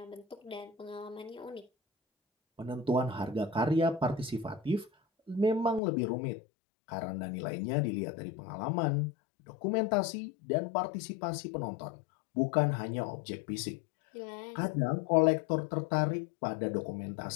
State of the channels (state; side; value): drops out; right; at 5.8 s